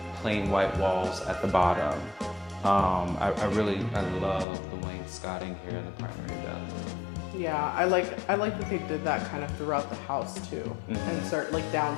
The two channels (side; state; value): right; drops out; at 4.5 s